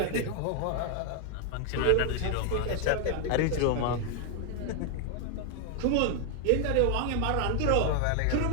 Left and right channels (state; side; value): different; both; correlation 0.00